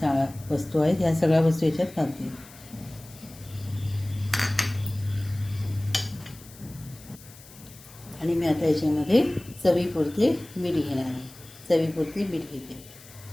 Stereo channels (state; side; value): noise; left; hiss, 21 dB below the sound